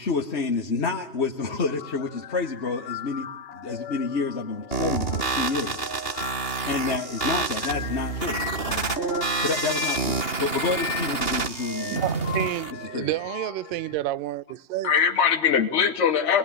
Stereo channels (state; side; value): late; right; 2.8 ms